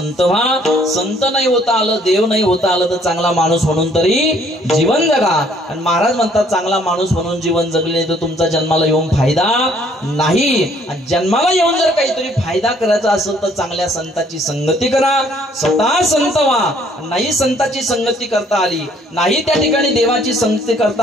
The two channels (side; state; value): both; normal; correlation 0.62